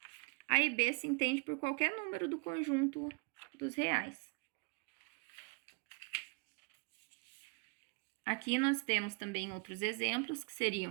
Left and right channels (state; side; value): quieter; left; 34.1 dB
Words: A e B se entende por qualquer número do conjunto dos reais. Aqui nós temos também outros exemplos, que